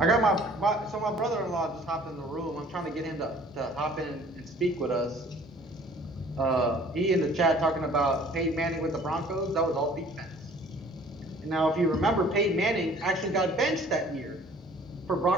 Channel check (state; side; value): normal; both; correlation 0.53